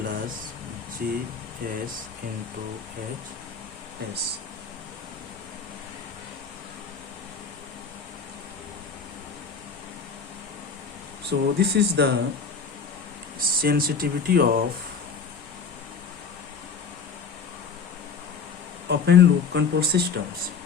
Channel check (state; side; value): quieter; right; 5.5 dB